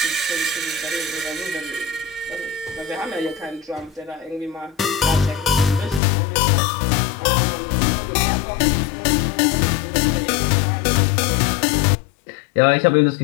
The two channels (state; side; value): drops out; right; at 6.0 s